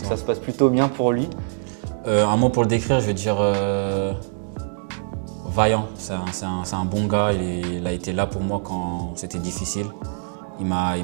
se passe plutôt bien pour lui. Un mot pour le décrire, je veux dire vaillant. C'est un bon gars, il a été là pour moi quand c'était difficile. Il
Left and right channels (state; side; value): silent; left; digital silence